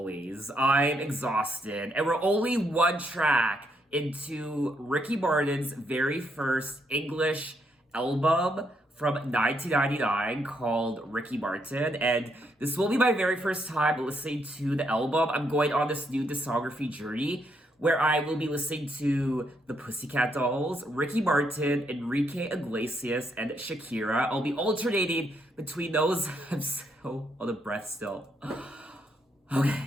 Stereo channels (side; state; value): both; normal; correlation 0.76